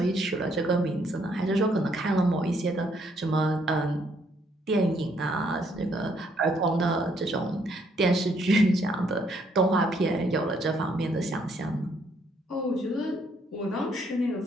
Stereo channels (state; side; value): normal; both; correlation 0.70